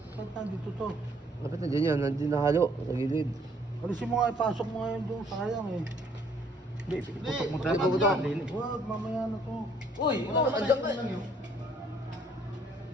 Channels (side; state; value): both; normal; correlation 0.63